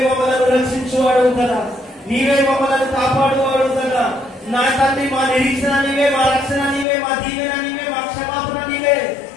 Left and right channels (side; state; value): right; drops out; at 6.9 s